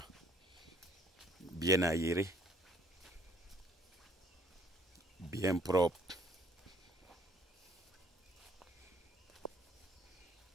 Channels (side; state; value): both; normal; correlation 0.62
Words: Bien aéré. Bien propre.